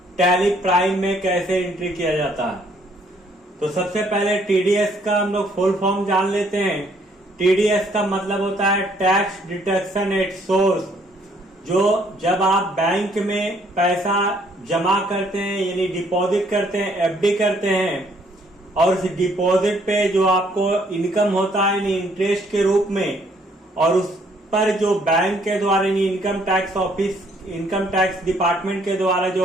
टैली प्राइम में कैसे एंट्री किया जाता है। तो सबसे पहले टीडीएस का हम लोग फुल फॉर्म जान लेते हैं। टीडीएस का मतलब होता है टैक्स डिडक्शन एट सोर्स। जो जब आप बैंक में पैसा जमा करते हैं यानी डिपॉजिट करते हैं, एफडी करते हैं, और उस डिपॉजिट पे जो आपको इनकम होता है यानी इंटरेस्ट के रूप में, और उस पर जो बैंक के द्वारा यानी income tax office, income tax department के द्वारा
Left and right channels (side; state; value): both; normal; correlation 0.65